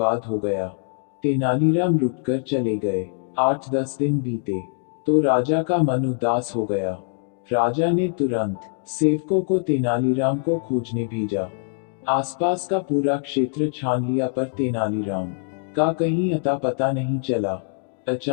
हो गया। तेनालीराम रुककर चले गए। 8-10 दिन बीते तो राजा का मन उदास हो गया। राजा ने तुरंत सेवकों को तेनालीराम को खोजने भेजा। आसपास का पूरा क्षेत्र छान लिया पर तेनालीराम का कहीं अता पता नहीं चला।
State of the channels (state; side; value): silent; right; digital silence